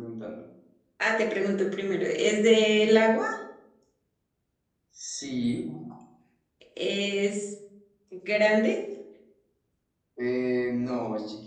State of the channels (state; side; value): identical; both; correlation 1.00